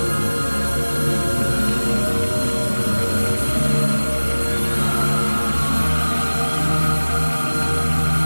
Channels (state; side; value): inverted; both; correlation -1.00